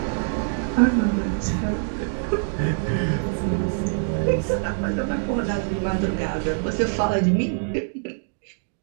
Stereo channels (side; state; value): left; silent; digital silence